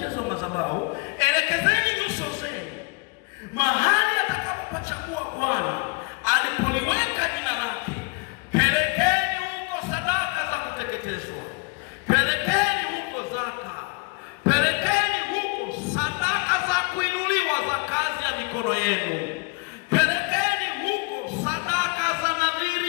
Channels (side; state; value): right; quieter; 29.5 dB